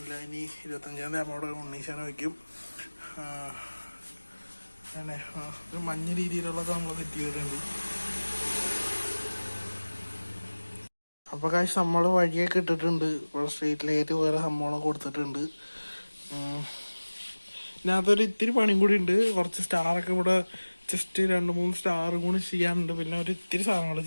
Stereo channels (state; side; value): inverted; both; correlation -1.00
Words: ഇനി 25-ാം തീയതി അവിടെ ഉണ്ണീശാനം വയ്ക്കും. അങ്ങനെ ഒരു മഞ്ഞ രീതിയിലുള്ളത് നമ്മൾ സെറ്റ് ചെയ്തിട്ടുണ്ട്. അപ്പോൾ കാശ് നമ്മൾ വഴിയൊക്കെ ഇട്ടിട്ടുണ്ട്. ഇവിടെ സ്ട്രീറ്റ് ലൈറ്റ് വേറെ സംഭവങ്ങളൊക്കെ കൊടുത്തിട്ടുണ്ട്. ഇതിനകത്തൊരു ഇത്തിരി പണിയും കൂടി ഉണ്ട്. കുറച്ച് സ്റ്റാറൊക്കെ ഇവിടെ ജസ്റ്റ് 2-3 സ്റ്റാറും കൂടി ചെയ്യാനുണ്ട്. പിന്നെ ഒരു ഇത്തിരി സാധനങ്ങൾ